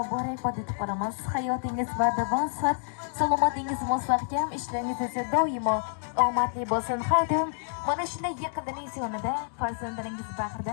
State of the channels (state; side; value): silent; right; digital silence